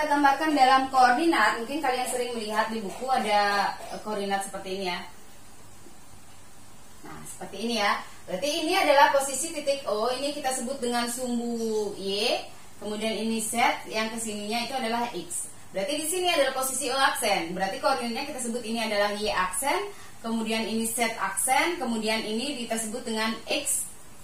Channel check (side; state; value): both; identical; correlation 1.00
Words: gambarkan dalam koordinat, mungkin kalian sering melihat di buku ada koordinat seperti ini ya. Nah, seperti ini ya. Berarti ini adalah posisi titik O, ini kita sebut dengan sumbu Y, kemudian ini Z, yang kesininya itu adalah X. Berarti di sini adalah posisi O aksen. Berarti koordinatnya kita sebut ini adalah Y aksen. Kemudian ini Z aksen, kemudian ini kita sebut dengan X